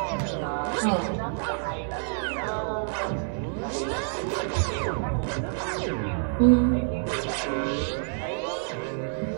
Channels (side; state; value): left; silent; digital silence